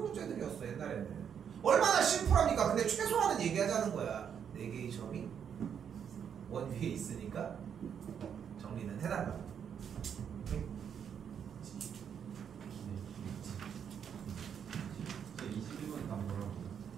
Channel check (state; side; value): quieter; left; 7.9 dB